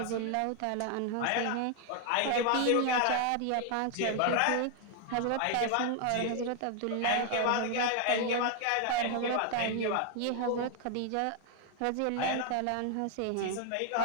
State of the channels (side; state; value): both; different; correlation 0.00